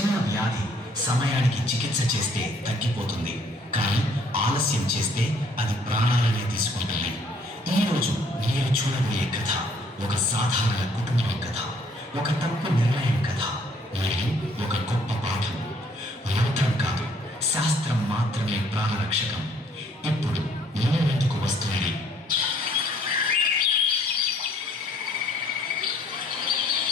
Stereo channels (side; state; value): both; normal; correlation 0.62